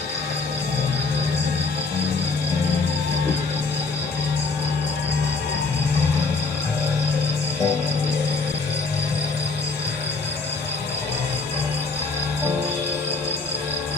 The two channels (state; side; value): quieter; right; 3.9 dB